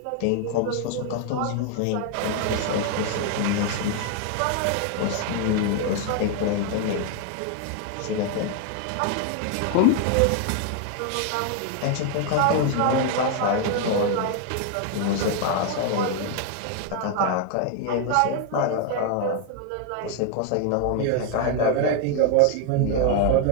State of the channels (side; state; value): both; different; correlation 0.00